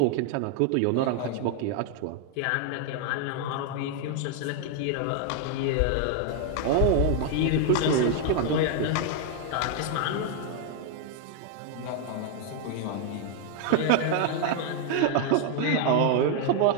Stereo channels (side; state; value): both; different; correlation 0.00